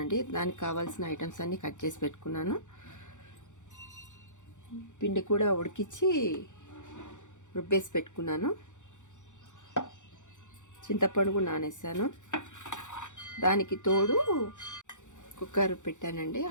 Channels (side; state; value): right; late; 0.85 ms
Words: దానికి కావాల్సిన ఐటమ్స్ అన్నీ కట్ చేసి పెట్టుకున్నాను. పిండి కూడా ఉడికించి రుబ్బేసి పెట్టుకున్నాను. చింతపండు కూడా నానేసాను. దానికి తోడు కుక్కర్ పెట్టానండి.